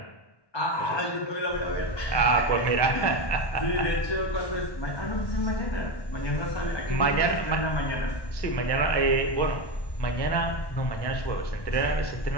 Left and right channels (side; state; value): right; late; 1.1 ms